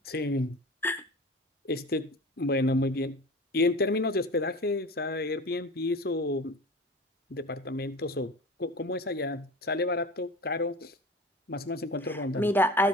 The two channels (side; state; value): both; normal; correlation 0.36